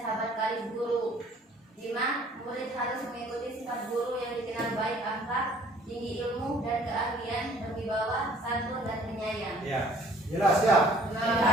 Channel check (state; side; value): normal; both; correlation 0.55